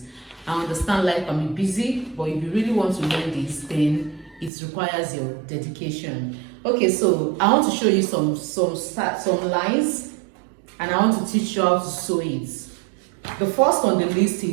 I understand life can be busy, but if you really want to learn this, then it requires your dedication. Okay, so I want to show you some lines, and I want to teach you how to sew it. The first on the list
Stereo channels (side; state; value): left; drops out; at 4.5 s